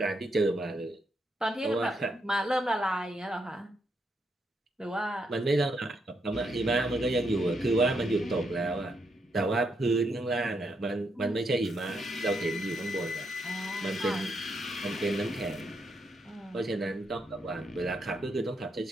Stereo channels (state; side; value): normal; both; correlation 0.78